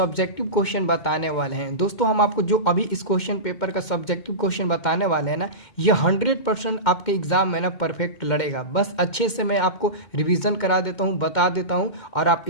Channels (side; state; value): right; late; 2.1 ms